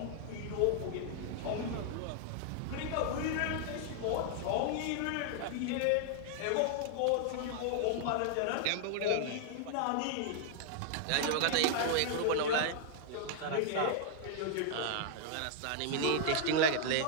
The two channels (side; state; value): both; different; correlation -0.01